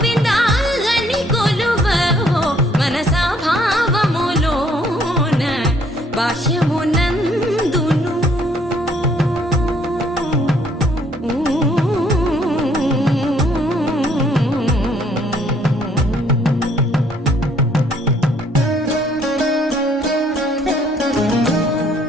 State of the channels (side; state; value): both; normal; correlation 0.64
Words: అని కొలువవో మనసా భావములోన బాహ్యమునందును